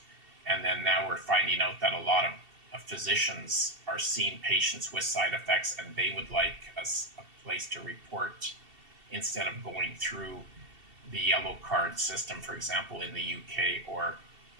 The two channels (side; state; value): left; late; 2.7 ms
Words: And then now we're finding out that a lot of physicians are seeing patients with side effects, and they would like a place to report instead of going through the yellow card system, for example, in the UK or